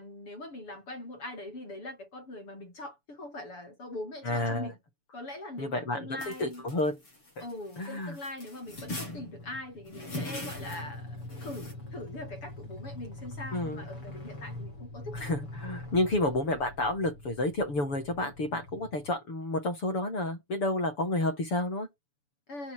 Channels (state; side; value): late; right; 7.0 ms